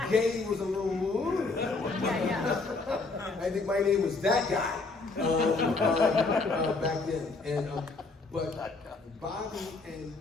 Gay was a little, I think my name was that guy back then. And but Bobby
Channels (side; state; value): right; quieter; 3.8 dB